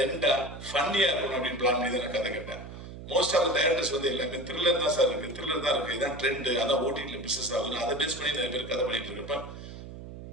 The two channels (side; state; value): right; noise; hum, 12 dB below the sound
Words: ஃபன்னியா இருக்கணும் அப்படின்னு பிளான் பண்ணி தான் கதை கேட்டேன். மோஸ்ட் ஆஃப் டைரக்டர்ஸ் வந்து எல்லாமே த்ரில்லர் தான் சார் இருக்கு, த்ரில்லர் தான் இருக்கு, இதான் ட்ரெண்ட், அதான் ஓடிடியில் பிசினஸ் ஆகுது, அதை பேஸ் பண்ணி நிறைய பேர் கதை பண்ணிட்டு இருக்கப்ப